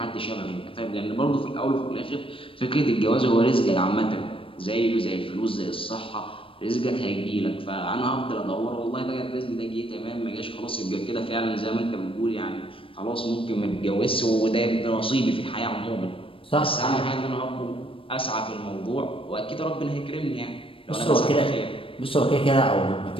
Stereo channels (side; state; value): right; late; 0.26 ms